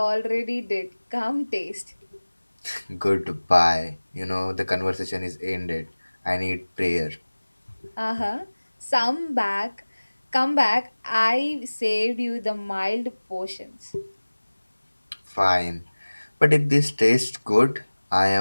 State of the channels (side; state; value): both; inverted; correlation -1.00